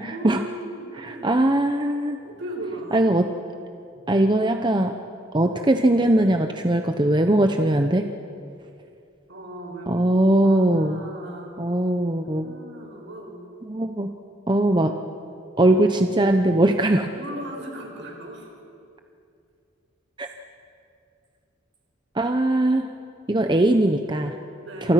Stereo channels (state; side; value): normal; both; correlation 0.75